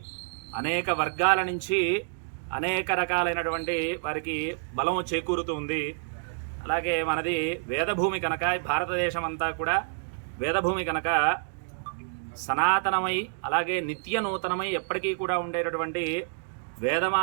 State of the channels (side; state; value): left; silent; digital silence